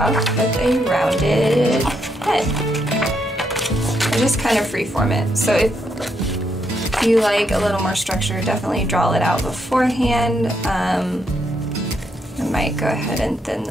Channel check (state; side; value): normal; both; correlation 0.78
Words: with a rounded head. And just kind of freeform it. So if you like a little more structure, definitely draw it out beforehand. I might go ahead and thin